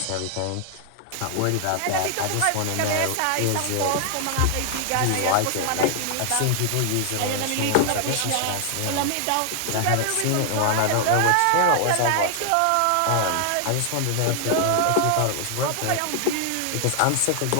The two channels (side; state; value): both; different; correlation 0.00